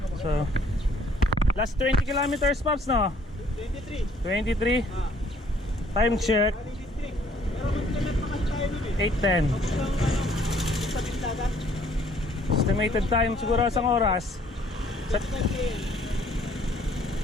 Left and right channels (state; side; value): normal; both; correlation 0.61